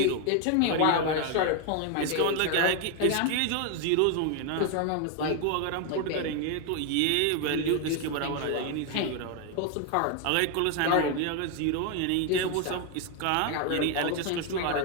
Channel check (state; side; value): different; both; correlation 0.01